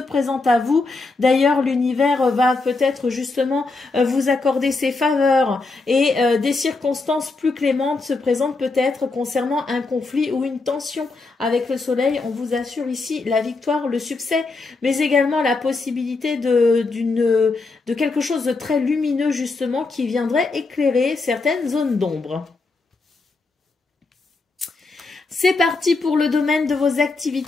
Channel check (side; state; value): right; quieter; 3.7 dB